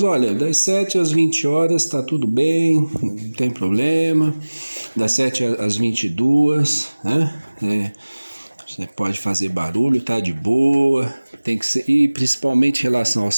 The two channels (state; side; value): inverted; both; correlation -1.00